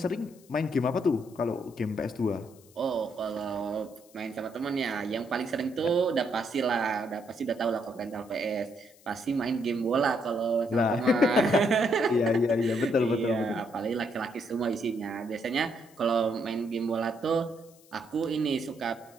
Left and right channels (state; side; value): noise; left; hiss, 27 dB below the sound